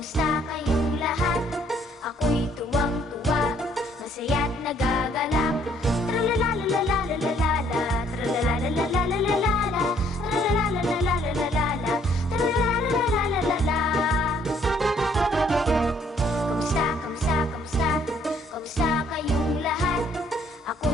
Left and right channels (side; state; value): both; normal; correlation 0.64